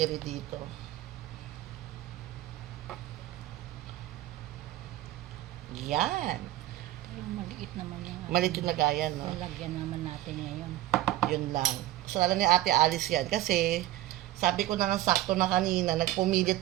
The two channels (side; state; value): left; quieter; 15.2 dB